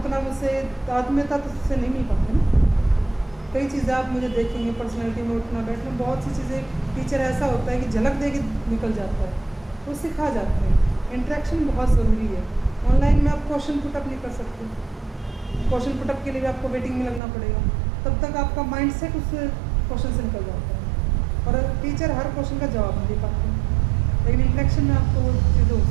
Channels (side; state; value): left; drops out; at 17.2 s